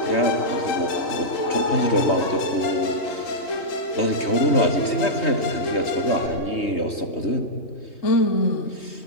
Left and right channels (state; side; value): late; right; 3.2 ms